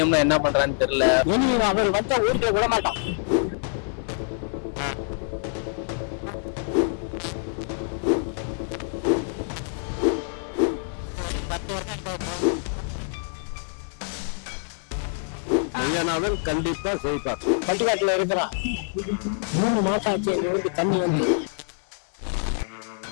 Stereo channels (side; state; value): right; silent; 61 dB below the other